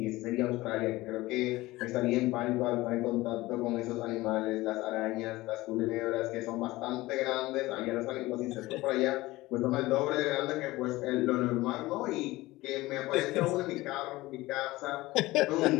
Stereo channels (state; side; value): quieter; right; 19.1 dB